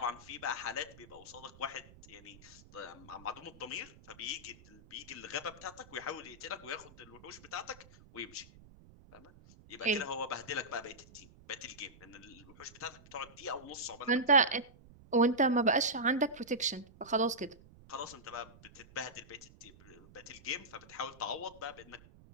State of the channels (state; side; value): noise; right; rumble, 22 dB below the sound